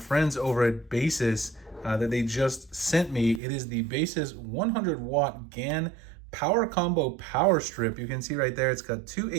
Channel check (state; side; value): drops out; left; at 3.4 s